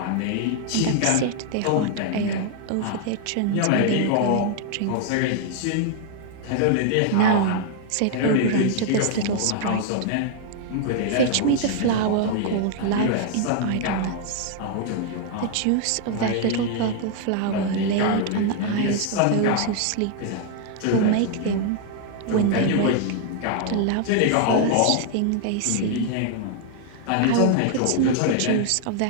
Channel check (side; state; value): both; different; correlation 0.00